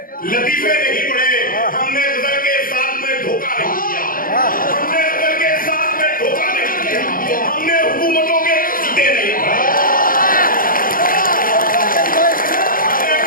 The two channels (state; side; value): late; right; 0.41 ms